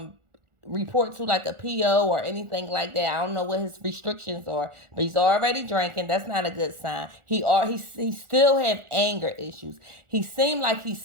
report to like a PO or anything like that. I don't know what his restrictions are, but he's already drinking. That's not a good sign. He still have anger issues. He seemed like he's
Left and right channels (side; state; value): left; late; 1.4 ms